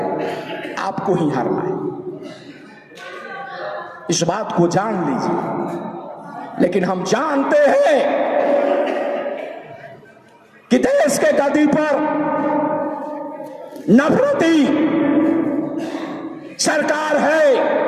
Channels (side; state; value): both; identical; correlation 1.00